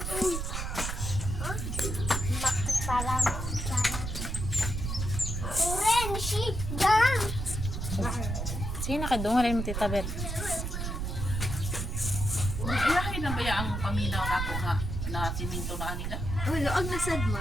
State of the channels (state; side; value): noise; right; rumble, 3 dB below the sound